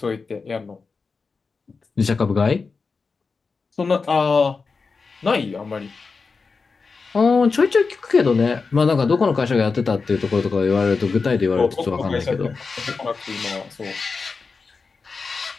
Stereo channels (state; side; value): quieter; right; 4.6 dB